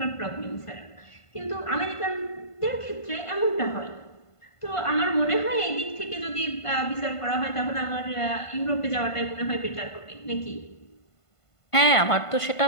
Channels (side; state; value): right; late; 1.5 ms